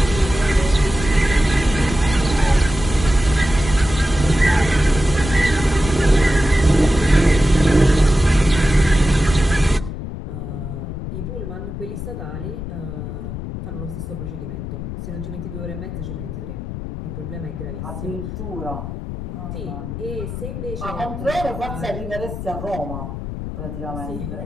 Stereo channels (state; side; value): noise; left; rumble, 7 dB below the sound